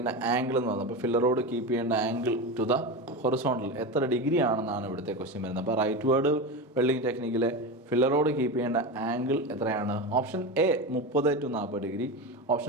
ആംഗിൾ എന്ന് പറയുന്നത്. അപ്പോൾ ഫില്ലർ റോഡ് കീപ്പ് ചെയ്യേണ്ട ആംഗിൾ ടു ദ ഹൊറിസോണ്ടൽ എത്ര ഡിഗ്രി ആണെന്നാണ് ഇവിടുത്തെ ക്വസ്റ്റ്യൻ വരുന്നത്. അപ്പോൾ റൈറ്റ് വേർഡ് വെൽഡിങ് ടെക്നിക്കിലെ ഫില്ലർ റോഡ് കീപ്പ് ചെയ്യേണ്ട ആംഗിൾ എത്രയാണ്? Option A 30 to 40 degree,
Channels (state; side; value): normal; both; correlation 0.21